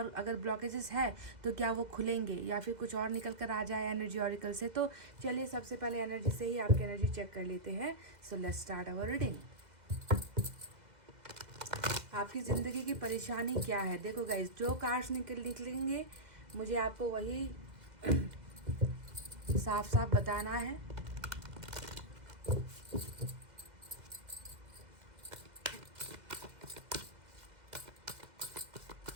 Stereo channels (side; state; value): left; late; 2.0 ms